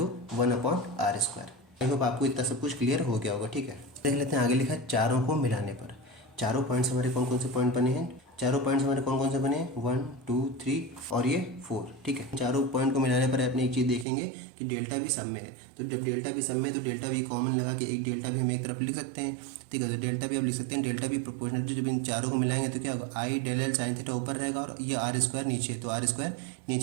1/r²। I hope आपको इतना सब कुछ क्लियर हो गया होगा। ठीक है, देख लेते हैं आगे लिखा है चारों को मिलाने पर। चारों पॉइंट्स हमारे कौन कौन से पॉइंट बने हैं, चारों पॉइंट्स हमारे कौन कौन से बने हैं, 1 2 3 और ये 4, ठीक है। चारों पॉइंट को मिलाने पर अपने एक चीज़ देखेंगे कि डेल्टा भी सब में है। तो जब डेल्टा भी सब में है तो डेल्टा भी कॉमन लगा के एक डेल्टा भी हम एक तरफ लिख सकते हैं, ठीक है। तो डेल्टा भी आप लिख सकते हैं, डेल्टा भी प्रोपोर्शनल टू, जब इन चारों को मिलाएंगे तो क्या होगा, आई डेल एल साइन थीटा ऊपर रहेगा और ये आर स्क्वायर नीचे, तो आर स्क्वायर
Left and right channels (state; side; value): drops out; left; at 14.1 s